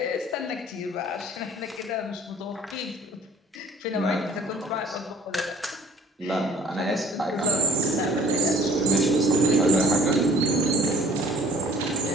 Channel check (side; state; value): both; normal; correlation 0.52